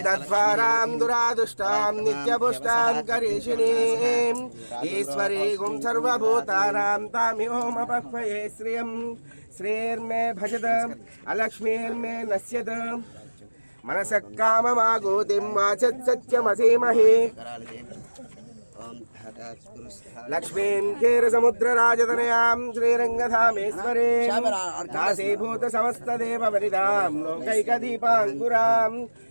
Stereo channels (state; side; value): inverted; both; correlation -1.00